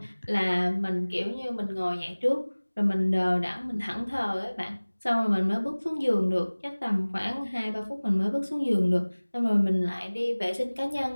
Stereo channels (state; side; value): inverted; both; correlation -1.00